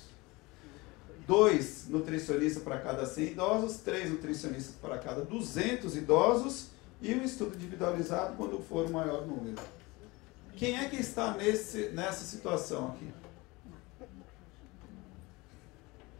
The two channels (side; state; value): right; quieter; 23.4 dB